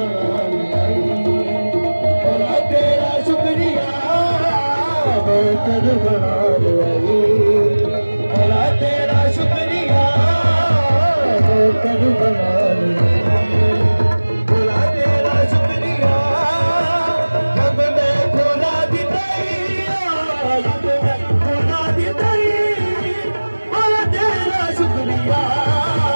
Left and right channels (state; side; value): inverted; both; correlation -1.00